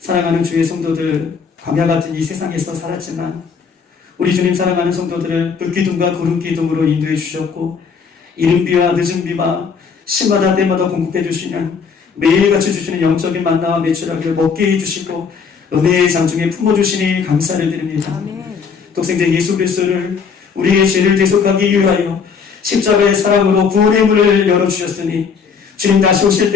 주의 성도들, 광야 같은 이 세상에서 살았지만 우리 주님 사랑하는 성도들을 불기둥과 구름기둥으로 인도해 주셨고 이른비와 늦은비와 시마다 때마다 공급해 주시는 매일같이 주시는 영적인 만나와 매출하기를 먹게 해주시고 은혜의 장중에 품어주시니 감사를 드립니다. 독생자 예수 그리스도를 우리의 죄를 대속하기 위하여 십자가의 사랑으로 구원의 문을 열어주셨으니 주님 다시 오실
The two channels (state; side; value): quieter; right; 6.0 dB